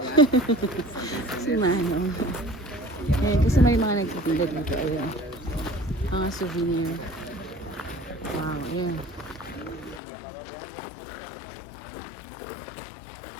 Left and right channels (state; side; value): drops out; right; at 10.0 s